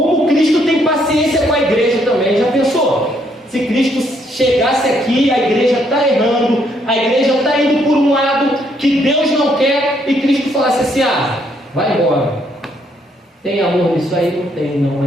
Cristo tem paciência com a igreja também, já pensou? Se Cristo chegasse aqui, a igreja está errando, a igreja está indo por um lado que Deus não quer, e Cristo falasse assim: ah, vai embora. Tem amor nisso aí? Não tem, não,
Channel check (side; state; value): both; normal; correlation 0.71